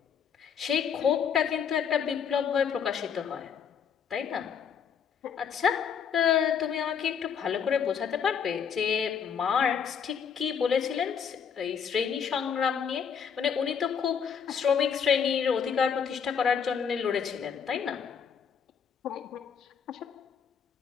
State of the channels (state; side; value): quieter; right; 7.3 dB